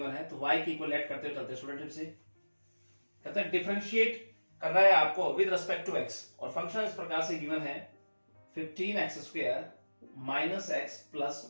है, तो y की इक्वल ऐड करते हुए चलते स्टूडेंट से कहता है डिफरेंशिएट कर रहा है आपको विद रिस्पेक्ट टू x, और फंक्शन इस प्रकार से गिवन है 15x² minus x plus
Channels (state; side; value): inverted; both; correlation -1.00